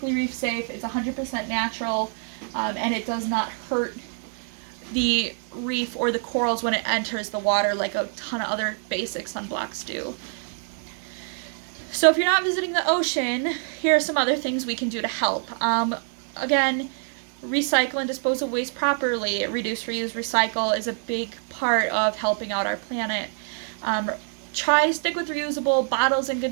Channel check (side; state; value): left; silent; 59 dB below the other